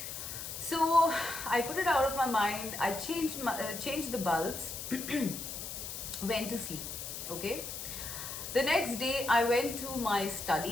So I put it out of my mind. I changed the bulbs, went to sleep. Okay. The next day, I went to my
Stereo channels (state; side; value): noise; left; hiss, 7 dB below the sound